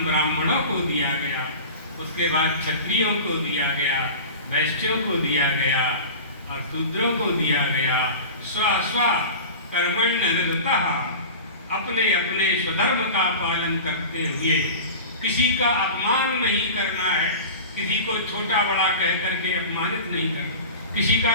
ब्राह्मणों को दिया गया, उसके बाद क्षत्रियों को दिया गया, वैश्यों को दिया गया और शूद्रों को दिया गया। स्व कर्मण्य निरतः, अपने अपने स्वधर्म का पालन करते हुए किसी का अपमान नहीं करना है, किसी को छोटा बड़ा कह करके अपमानित नहीं करना, किसी का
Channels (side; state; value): both; inverted; correlation -0.34